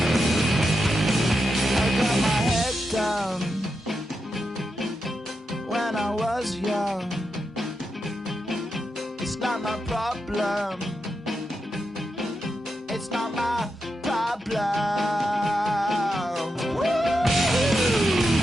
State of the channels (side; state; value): both; normal; correlation 0.87